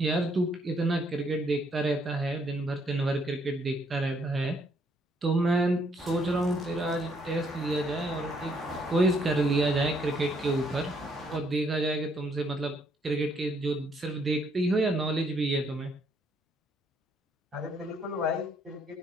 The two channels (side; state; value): both; normal; correlation 0.70